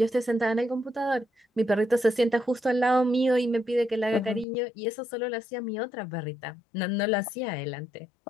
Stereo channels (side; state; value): right; drops out; at 4.5 s